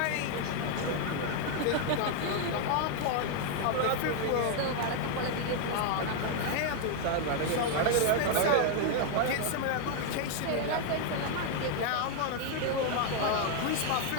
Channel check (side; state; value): both; different; correlation 0.00